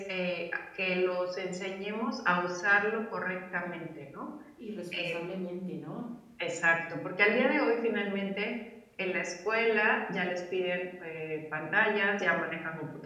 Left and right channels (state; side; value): identical; both; correlation 1.00